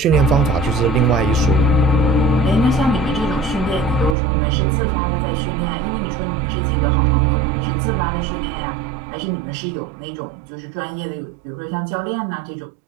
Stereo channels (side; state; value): left; drops out; at 4.2 s